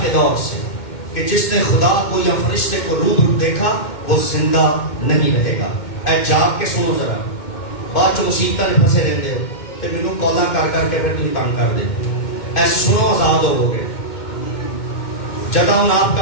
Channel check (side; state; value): right; late; 2.2 ms